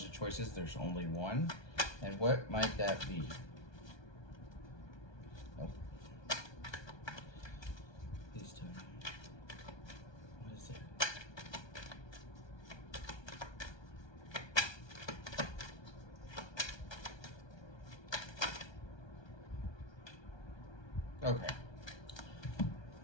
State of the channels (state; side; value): late; right; 1.2 ms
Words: of choices, there's only one. And what might that be? Oh. Please tell me. What is it? Okay.